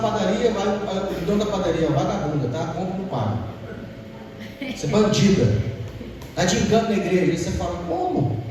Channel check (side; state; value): both; identical; correlation 1.00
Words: vai o dono da padaria, vagabunda, tá? Compra e não paga. Você é bandida, está de engano na igreja. Aí você fala, como?